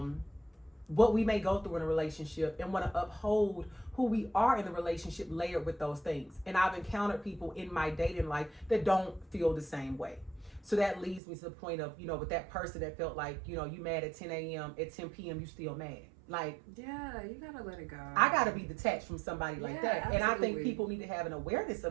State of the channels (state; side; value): drops out; left; at 11.2 s